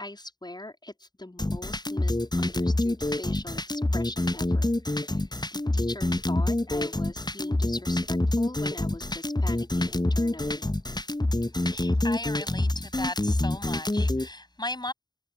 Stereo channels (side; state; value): right; late; 0.20 ms